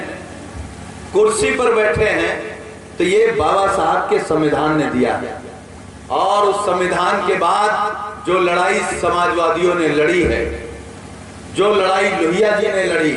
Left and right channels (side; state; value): both; identical; correlation 1.00